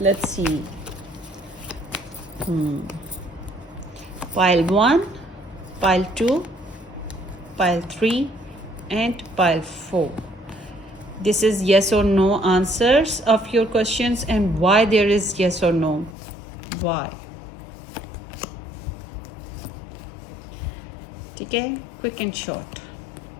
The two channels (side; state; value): right; drops out; at 16.2 s